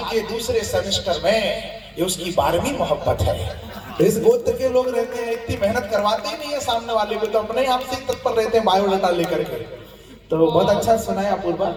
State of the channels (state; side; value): identical; both; correlation 1.00